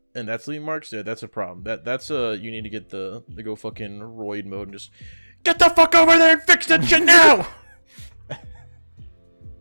that's leaving marks there. That's a problem. That's you need to get the go fucking roid mode and just get the fuck over there and fix that shit now.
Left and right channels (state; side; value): inverted; both; correlation -1.00